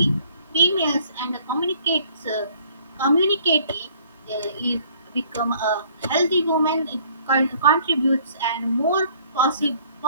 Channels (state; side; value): inverted; both; correlation -0.59